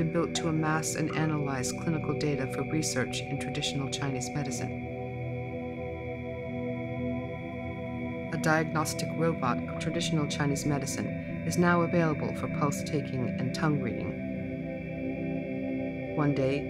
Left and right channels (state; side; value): identical; both; correlation 1.00